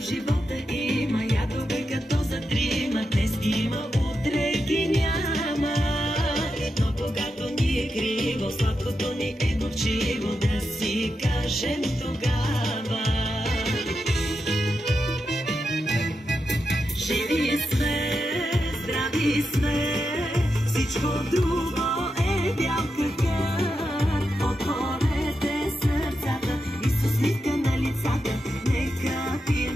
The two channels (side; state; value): both; normal; correlation 0.87